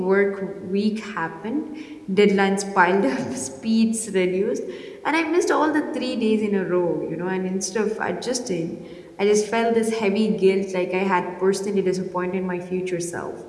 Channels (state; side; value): identical; both; correlation 1.00